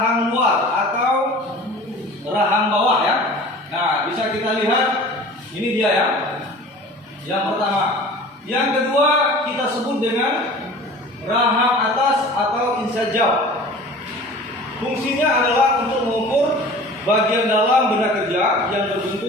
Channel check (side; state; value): both; normal; correlation 0.42